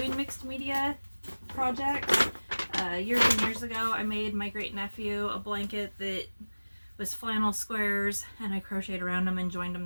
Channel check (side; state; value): both; inverted; correlation -1.00